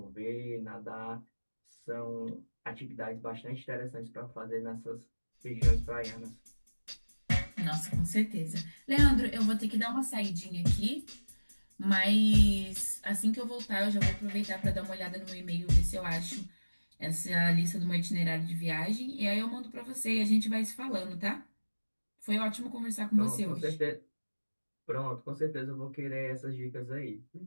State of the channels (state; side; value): inverted; both; correlation -1.00